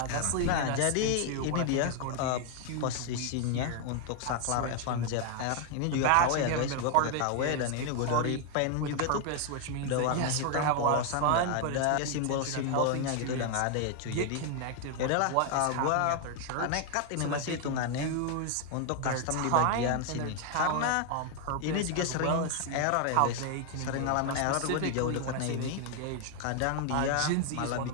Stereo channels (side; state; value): both; different; correlation 0.00